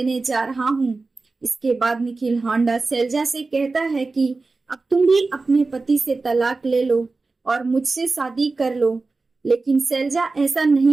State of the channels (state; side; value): quieter; left; 3.7 dB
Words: जा रहा हूँ। इसके बाद निखिल होंडा शैलजा से कहता है कि अब तुम भी अपने पति से तलाक ले लो और मुझसे शादी कर लो। लेकिन शैलजा ऐसा